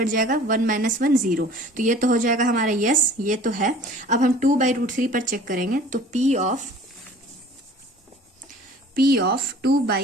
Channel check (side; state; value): both; normal; correlation 0.47